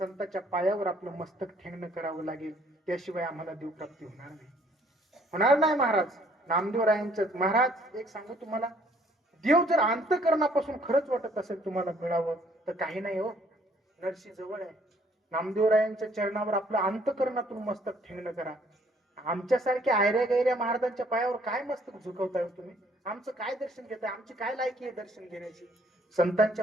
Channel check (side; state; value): both; normal; correlation 0.62